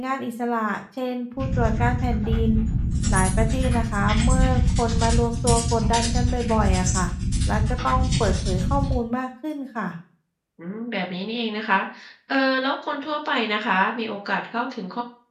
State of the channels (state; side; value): identical; both; correlation 1.00